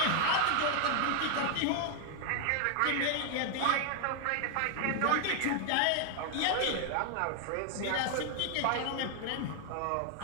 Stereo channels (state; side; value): different; both; correlation 0.00